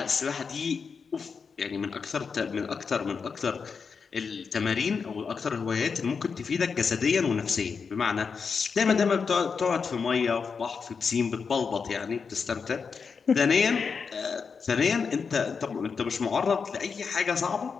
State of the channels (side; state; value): right; quieter; 5.6 dB